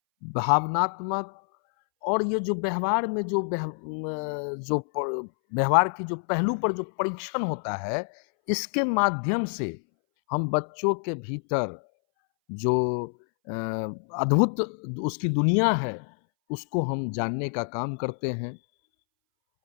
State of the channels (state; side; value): silent; right; 60 dB below the other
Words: भावनात्मक और ये जो व्यवहार में व्यवहार की जो पहलू पर जो परीक्षण होता है, इसके माध्यम से हम बच्चों के भीतर जो अ, अद्भुत उसकी दुनिया है, उसको हम जानने का काम करते हैं